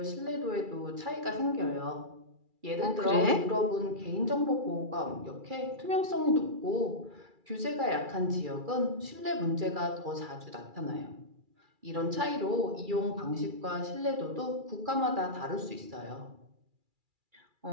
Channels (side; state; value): left; late; 2.3 ms